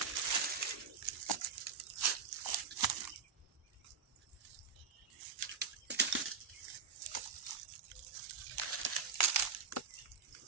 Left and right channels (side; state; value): left; quieter; 5.9 dB